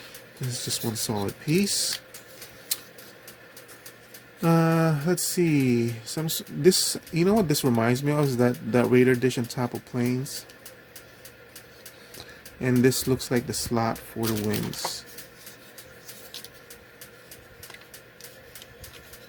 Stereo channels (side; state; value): both; identical; correlation 1.00